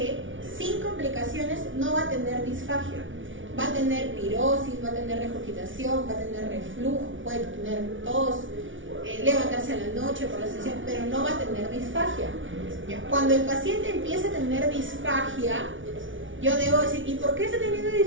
sin complicaciones no va a tener disfagia. Va a tener pirosis, va a tener regurgitación, va a tener reflujo, puede tener tos, levantarse a la noche por la sesión, pero no va a tener disfagia. ¿Ya? Cuando el paciente empieza a tener disfagia, yo debo decir, ¿y por qué está teniendo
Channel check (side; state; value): left; late; 0.56 ms